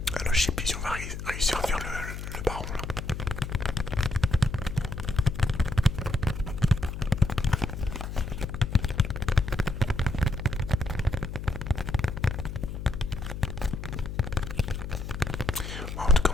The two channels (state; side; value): noise; left; hum, 7 dB below the sound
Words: Alors, je sais plus si on va réussir à faire le baron là. Bon, en tout cas,